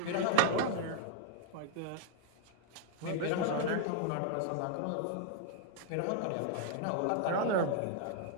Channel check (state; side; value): different; both; correlation 0.00